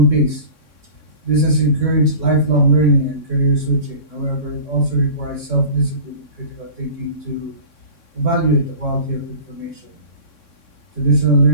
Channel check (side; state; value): right; late; 3.6 ms